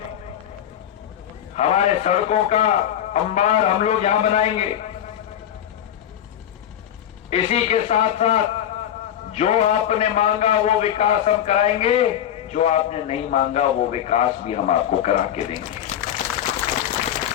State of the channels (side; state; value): right; quieter; 10.5 dB